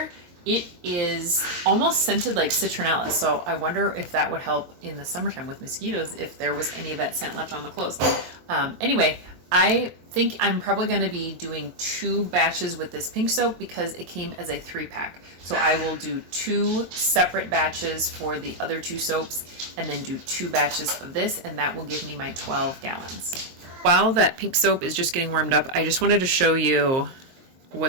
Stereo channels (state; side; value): late; left; 23 ms